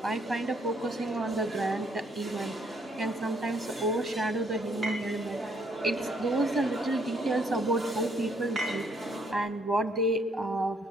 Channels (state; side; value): normal; both; correlation 0.68